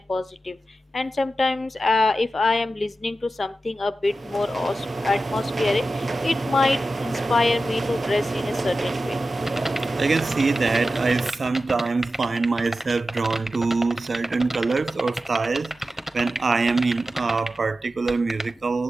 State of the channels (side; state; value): both; normal; correlation 0.93